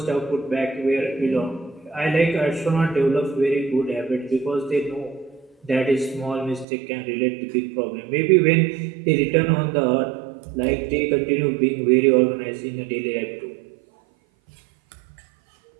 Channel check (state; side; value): drops out; left; at 6.7 s